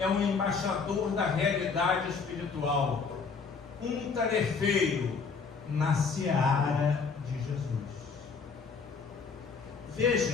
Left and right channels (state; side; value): quieter; right; 5.2 dB